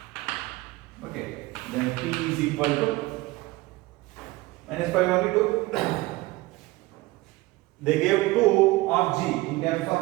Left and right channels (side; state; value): left; quieter; 20.5 dB